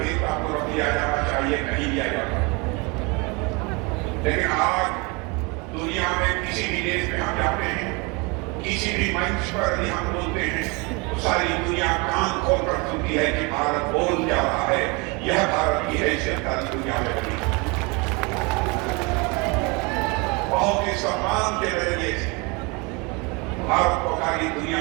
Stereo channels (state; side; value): quieter; left; 28.5 dB